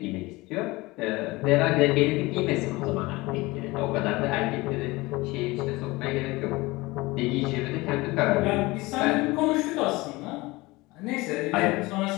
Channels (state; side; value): quieter; right; 21.8 dB